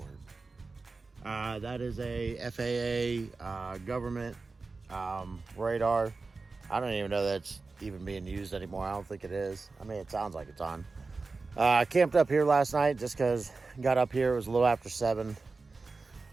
That is a FAA government radar. I don't even know that's even being used anymore. I don't think it is. I mean, it sounds like it's on. I camped up here last night just because got up here. It was a little after 7.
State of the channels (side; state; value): left; quieter; 3.9 dB